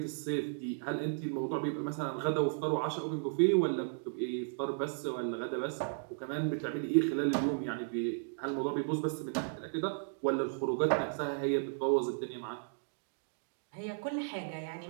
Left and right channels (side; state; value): left; silent; digital silence